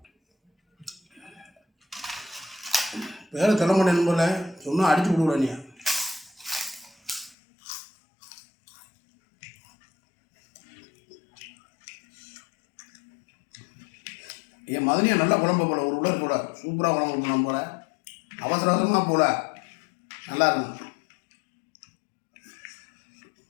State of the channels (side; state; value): right; drops out; at 7.4 s